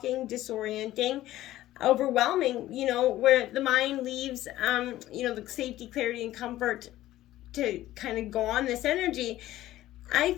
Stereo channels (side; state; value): right; quieter; 14.8 dB